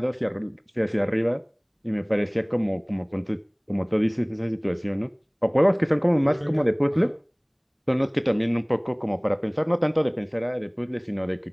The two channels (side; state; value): both; identical; correlation 1.00